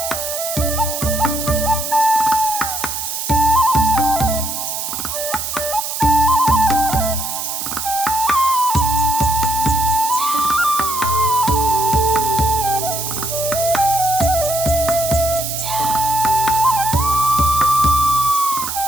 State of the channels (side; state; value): right; noise; hiss, 4 dB below the sound